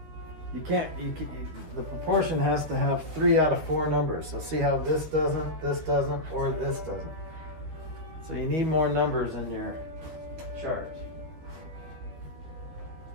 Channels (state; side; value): late; left; 13 ms